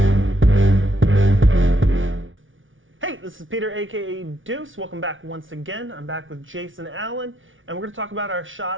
This is Peter, aka Deuce. Welcome back once again. I'm back with Jason Allen, and we're going to talk about our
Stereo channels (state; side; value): late; left; 0.57 ms